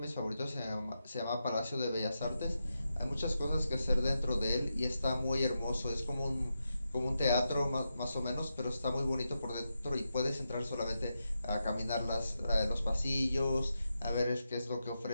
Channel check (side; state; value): both; inverted; correlation -0.87